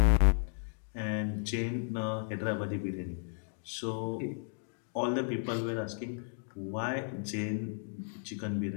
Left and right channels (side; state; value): right; silent; digital silence